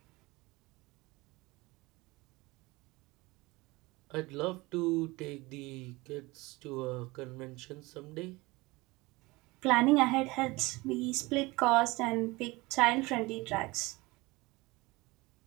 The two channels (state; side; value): quieter; left; 22.5 dB